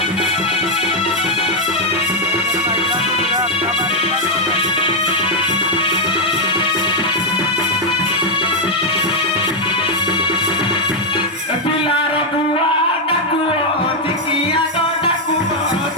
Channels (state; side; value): normal; both; correlation 0.01